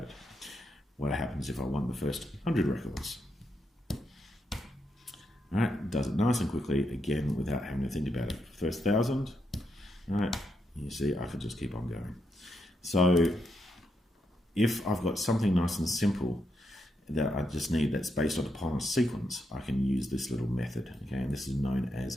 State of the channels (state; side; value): normal; both; correlation 0.81